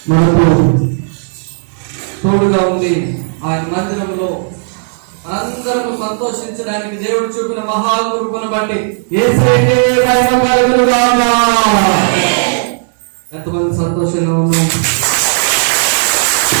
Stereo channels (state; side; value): silent; left; digital silence